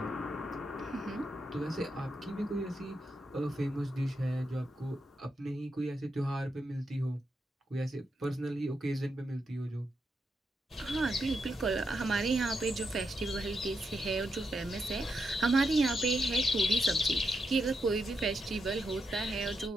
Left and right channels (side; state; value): both; normal; correlation 0.83